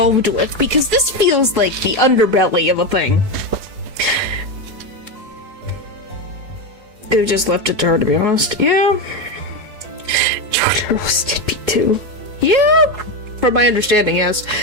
with, because this feels like the underbelly of a thing. They just left it to her, to be honest. Yeah. George roasted me too. Yeah, from my understanding, yes.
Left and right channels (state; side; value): late; left; 4.7 ms